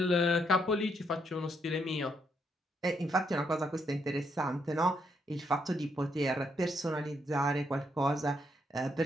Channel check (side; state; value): both; normal; correlation 0.75